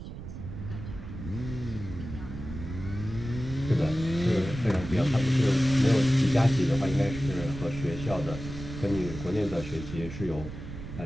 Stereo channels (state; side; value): noise; right; rumble, 10 dB below the sound